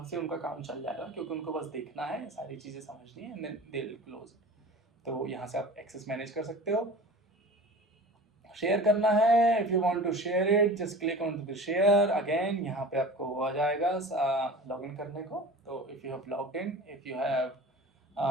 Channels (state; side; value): normal; both; correlation 0.38